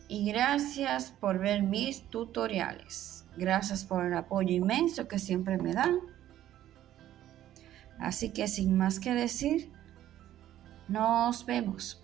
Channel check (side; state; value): left; quieter; 12.6 dB